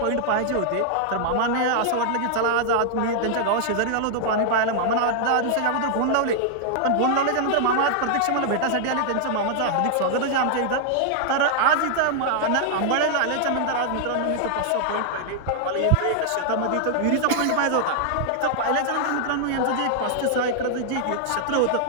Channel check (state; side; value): different; both; correlation -0.01